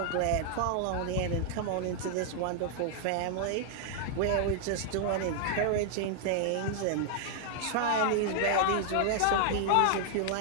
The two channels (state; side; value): different; both; correlation 0.00